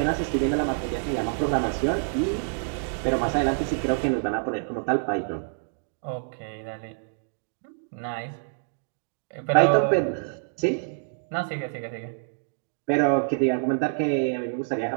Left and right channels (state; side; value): silent; left; digital silence